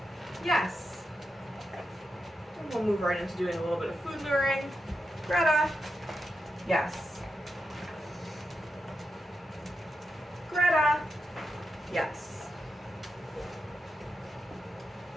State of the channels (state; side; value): normal; both; correlation 0.88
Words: Yes. And we'll move right into doing a little bit of food luring. Greta. Yes. Greta. Yes.